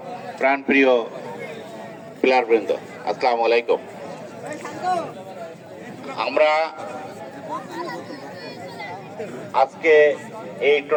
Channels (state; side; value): identical; both; correlation 1.00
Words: প্রাণপ্রিয় প্লেয়ারবৃন্দ, আসসালামু আলাইকুম। আমরা আজকে এই